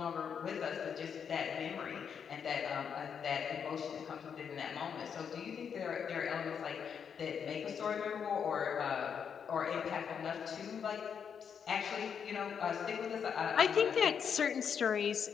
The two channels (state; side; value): quieter; right; 7.2 dB